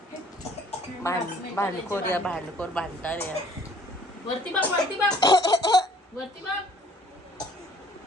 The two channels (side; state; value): both; normal; correlation 0.56